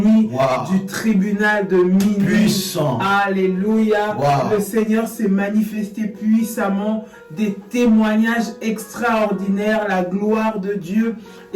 du tribunal de minuit. Puissant. Alléluia. Le Seigneur s'est manifesté puissamment. Des témoignages extraordinaires. La gloire de Dieu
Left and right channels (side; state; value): both; identical; correlation 1.00